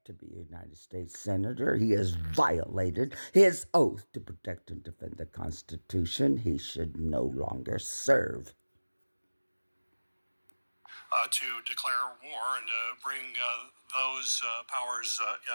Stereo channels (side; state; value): both; inverted; correlation -1.00